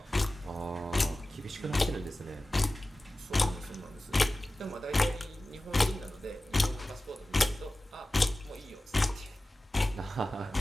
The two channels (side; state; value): both; normal; correlation 0.96